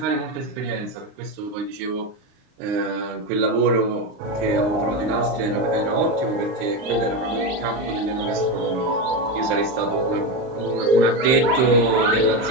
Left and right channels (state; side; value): late; left; 38 ms